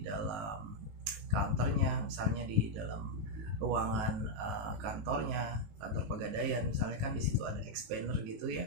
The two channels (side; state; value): left; late; 19 ms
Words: dalam counternya, misalnya di dalam ruangan kantor Pegadaian misalnya kan di situ ada expander gitu